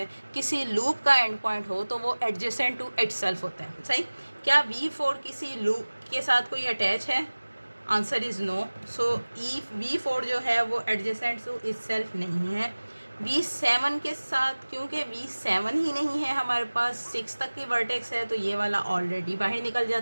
किसी लूप का एंड पॉइंट हो तो वो एडजेसेंट टू इट सेल्फ होता है। सही, क्या V4 किसी लूप के साथ कोई अटैच है, answer is no. So V4 जो है वो एडजेसेंट टू इट सेल्फ नहीं है। V7 के साथ, क्योंकि V7 ही नहीं है हमारे पास, 6 तक की वर्टेक्स है तो ये वाला ऑलरेडी बाहर निकल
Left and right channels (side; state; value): both; inverted; correlation -1.00